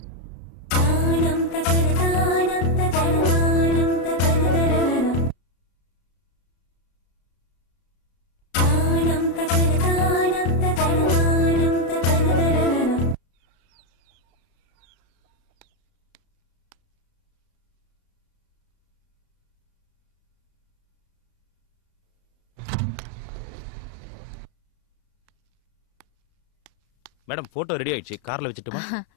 மேடம் போட்டோ ரெடி ஆயிடுச்சு, கார்ல வச்சுட்டுமா?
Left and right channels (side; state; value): right; late; 33 ms